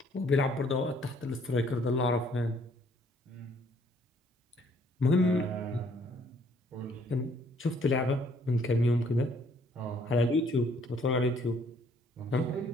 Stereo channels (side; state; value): both; normal; correlation 0.63